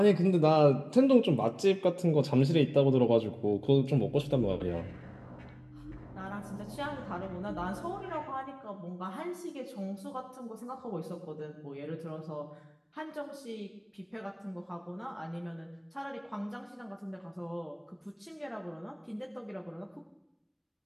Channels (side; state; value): both; identical; correlation 1.00